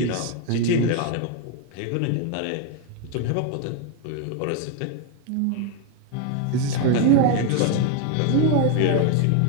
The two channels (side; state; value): both; different; correlation 0.01